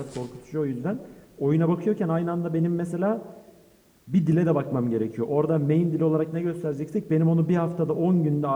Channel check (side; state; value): both; identical; correlation 1.00